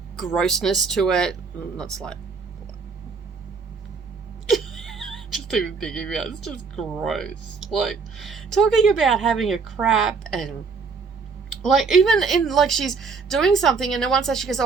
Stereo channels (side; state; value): left; quieter; 4.9 dB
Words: grossness to it. Not slight. Just even thinking about it, it's just gross. Like, talking about having a crap, and like, even in, like, she's doing something and then once she goes,